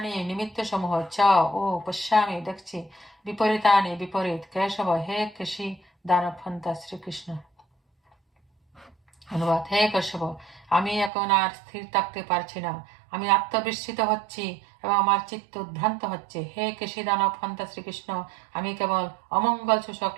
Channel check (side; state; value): left; drops out; at 11.1 s